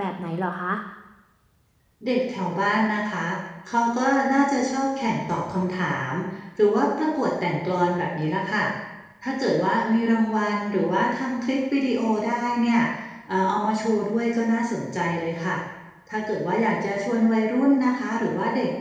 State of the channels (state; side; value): identical; both; correlation 1.00